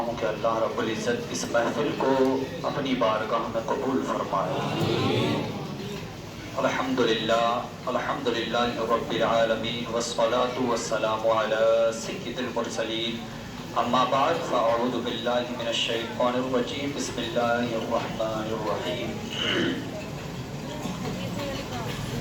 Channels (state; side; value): identical; both; correlation 1.00